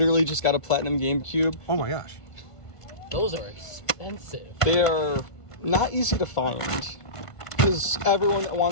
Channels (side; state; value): right; late; 1.5 ms